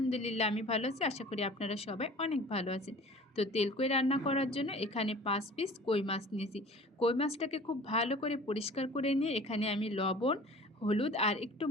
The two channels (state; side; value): normal; both; correlation 0.44